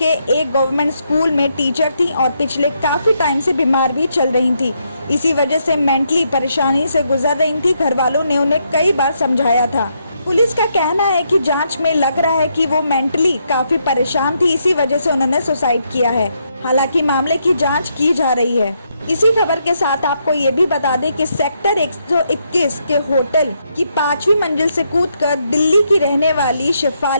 एक गवर्नमेंट स्कूल में टीचर थी और पिछले काफी टाइम से बीमार भी चल रही थी। इसी वजह से मेंटली परेशानी से गुजर रही थी। घर वालों ने उन्हें कई बार समझाया था। पुलिस का कहना है कि जांच में लग रहा है कि वो मेंटली काफी परेशान थी, इसी वजह से उन्होंने सुसाइड किया है। हालांकि मामले की जांच की जा रही है। इसी खबर के साथ आपको ये भी बता दें कि सेक्टर 121 के होटल की 5वीं मंजिल से कूदकर दिल्ली की रहने वाली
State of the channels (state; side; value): inverted; both; correlation -0.78